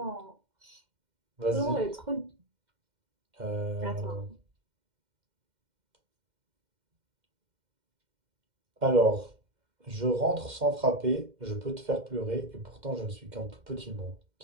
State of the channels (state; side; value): late; left; 2.1 ms